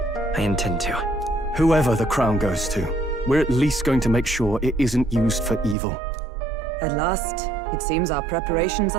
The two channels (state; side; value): drops out; left; at 5.8 s